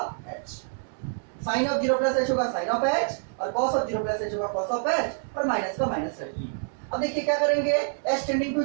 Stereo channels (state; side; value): silent; left; digital silence